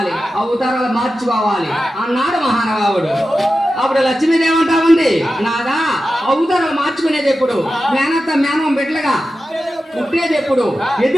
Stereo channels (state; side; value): normal; both; correlation 0.92